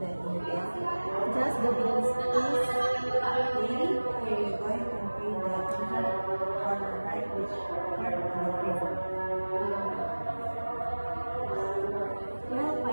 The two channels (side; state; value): both; inverted; correlation -1.00